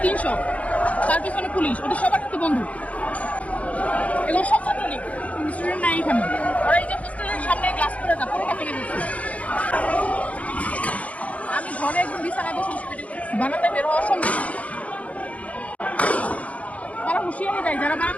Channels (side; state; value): right; late; 0.066 ms